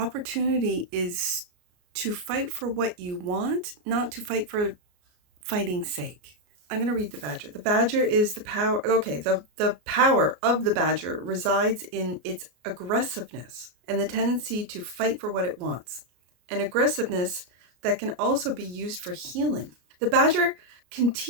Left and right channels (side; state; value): left; late; 33 ms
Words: is to fight for what you want, not to fight for fighting's sake. I'm going to read the Badger. The Badger is the power. Okay, the power of the Badger resides in its aggressiveness and the tendency to fight for what it wants. An aggressiveness that can also be used for healing. The Badger can